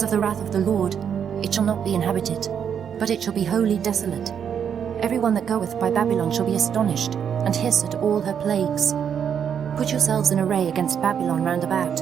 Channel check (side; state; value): left; quieter; 8.0 dB